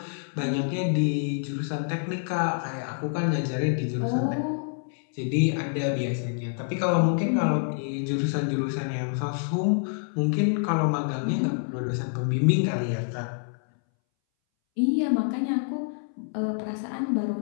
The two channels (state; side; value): silent; right; 60 dB below the other